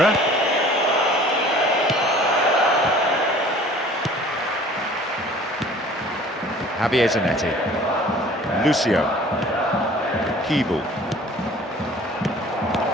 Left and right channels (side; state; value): both; normal; correlation 0.49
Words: Javier Zanetti. Lucio. Keeble.